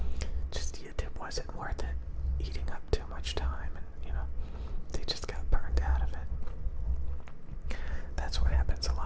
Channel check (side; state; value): both; identical; correlation 1.00